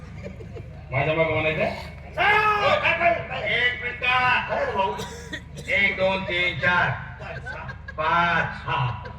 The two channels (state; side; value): identical; both; correlation 1.00